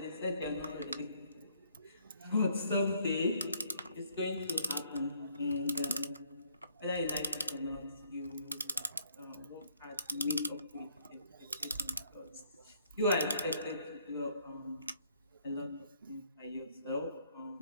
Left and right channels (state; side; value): inverted; both; correlation -0.66